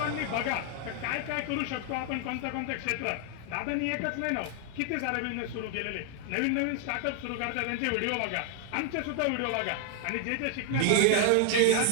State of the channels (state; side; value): different; both; correlation 0.00